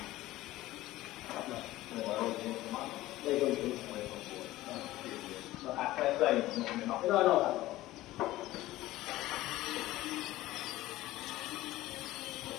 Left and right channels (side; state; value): right; quieter; 16.6 dB